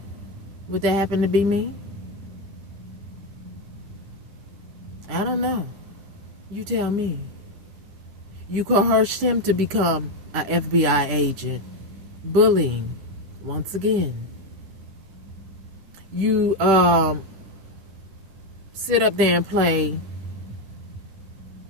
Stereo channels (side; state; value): left; late; 10 ms